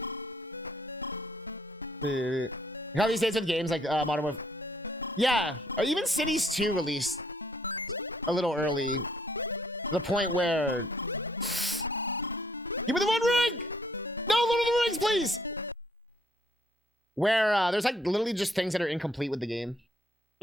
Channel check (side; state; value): both; normal; correlation 0.66